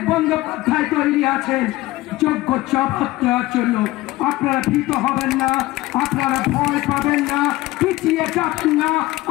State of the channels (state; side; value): quieter; right; 18.2 dB